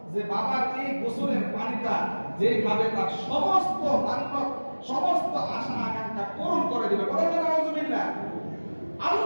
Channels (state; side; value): inverted; both; correlation -1.00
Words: যে বাবার এই গোসলের পানিটা যে খাবে তার সমস্ত মান্যত সমস্ত আশা আকাঙ্ক্ষা পূরণ করে দিবে। বলেন না নাউজুবিল্লাহ।